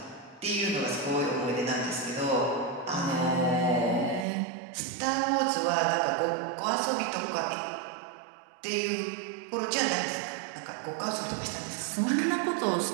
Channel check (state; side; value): drops out; left; at 4.2 s